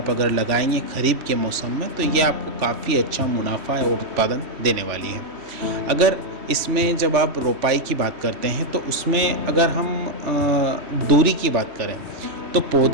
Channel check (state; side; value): late; left; 3.1 ms